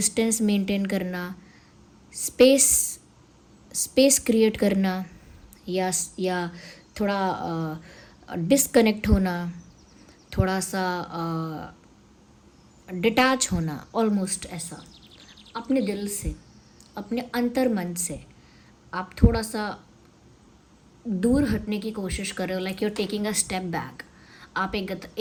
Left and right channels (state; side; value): identical; both; correlation 1.00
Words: मेंटेन करना, स्पेस क्रिएट करना, या थोड़ा डिस्कनेक्ट होना, थोड़ा सा डिटैच होना, ऑलमोस्ट ऐसा अपने दिल से, अपने अंतर मन से आप थोड़ा सा दूर हटने की कोशिश कर रहे हो। Like you are taking a step back, आप